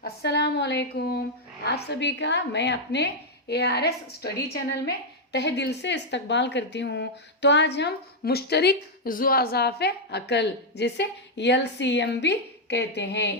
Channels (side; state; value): both; normal; correlation -0.01